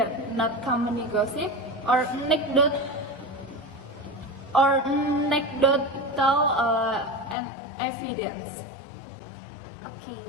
not company gossip or anecdotal and evidence. Okay,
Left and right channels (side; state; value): right; drops out; at 7.4 s